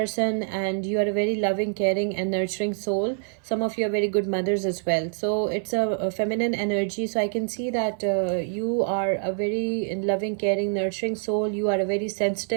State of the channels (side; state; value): left; silent; 56 dB below the other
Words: and you are a very loving, caring and nurturing soul. Some of you are very good mothers as well. So it's a feminine energy. So I can see that you are a very loving, caring, nurturing soul. You are a very